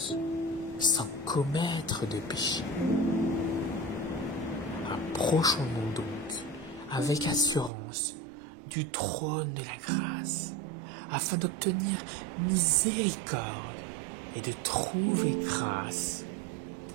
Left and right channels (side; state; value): left; drops out; at 7.7 s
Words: sans commettre de péché. Approchons-nous donc avec assurance du trône de la grâce, afin d'obtenir miséricorde et de trouver grâce